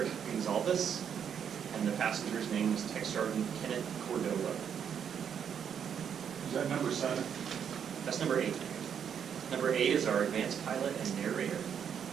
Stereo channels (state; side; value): quieter; left; 8.0 dB